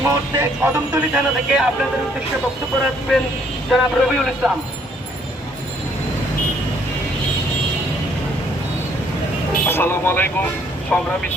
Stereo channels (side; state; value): both; normal; correlation 0.65